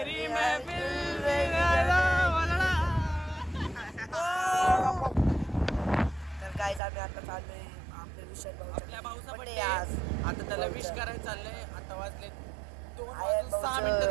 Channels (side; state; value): left; drops out; at 6.8 s